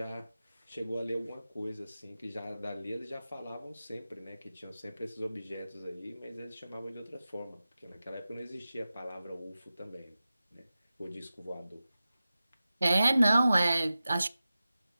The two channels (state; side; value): inverted; both; correlation -0.95